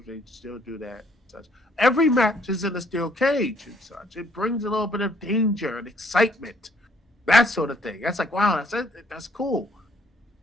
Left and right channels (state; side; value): normal; both; correlation 0.66